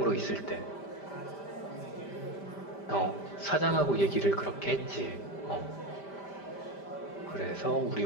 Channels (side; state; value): right; late; 5.1 ms